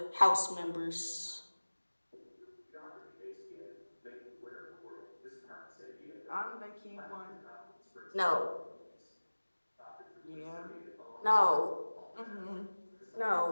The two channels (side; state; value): both; inverted; correlation -1.00